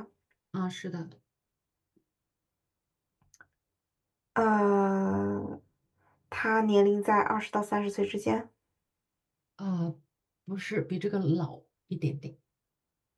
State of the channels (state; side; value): identical; both; correlation 1.00